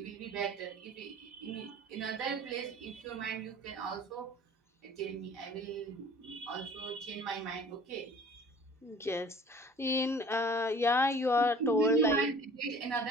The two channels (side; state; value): both; normal; correlation 0.48